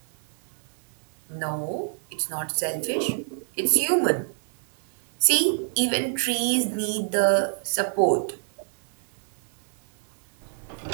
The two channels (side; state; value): left; silent; 60 dB below the other